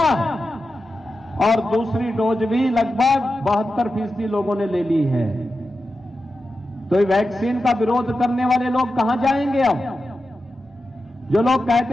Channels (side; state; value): both; normal; correlation 0.91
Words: और दूसरी डोज भी लगभग 72% लोगों ने ले ली है। तो वैक्सीन का विरोध करने वाले लोग कहां जाएंगे? अब जो लोग